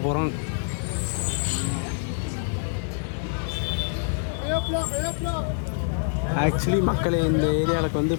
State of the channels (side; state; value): right; silent; digital silence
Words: போகிறோம். ஆக்சுவலி மக்களே, இந்த ஏரியாவுக்கு வந்து